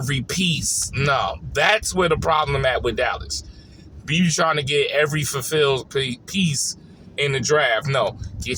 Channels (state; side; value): identical; both; correlation 1.00